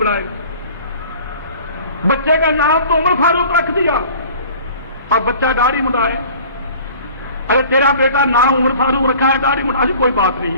بچے کا نام تو عمر فاروق رکھ دیا اور بچہ داڑھی مڈائے، ارے تیرا بیٹا نام عمر فاروق رکھا ہے، داڑھی مڈا، کوئی بات نہیں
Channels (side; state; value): both; inverted; correlation -0.47